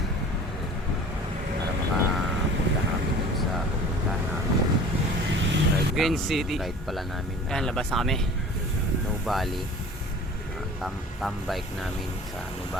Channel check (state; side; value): normal; both; correlation 0.43